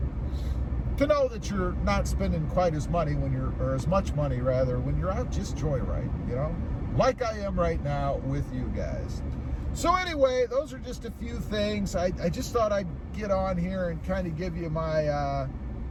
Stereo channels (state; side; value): identical; both; correlation 1.00